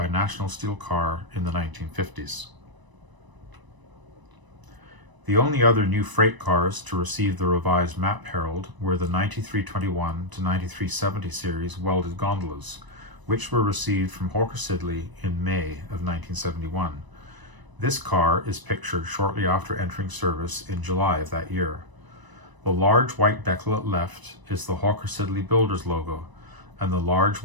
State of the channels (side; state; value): left; late; 1.0 ms